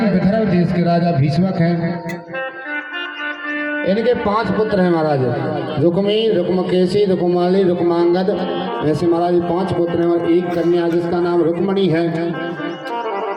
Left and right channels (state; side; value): identical; both; correlation 1.00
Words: विदर्भ देश के राजा भीष्मक हैं। इनके 5 पुत्र हैं महाराज, रुक्मी, रुक्मकेशी, रुक्माली, रुक्मांगद। ऐसे महाराज 5 पुत्र हैं और एक कन्या जिसका नाम रुक्मणी है।